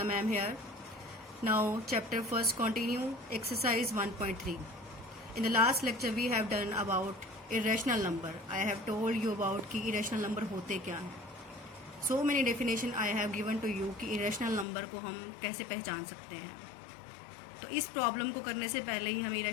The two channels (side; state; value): right; drops out; at 14.7 s